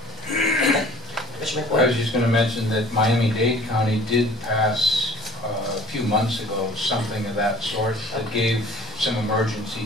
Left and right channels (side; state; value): both; normal; correlation 0.48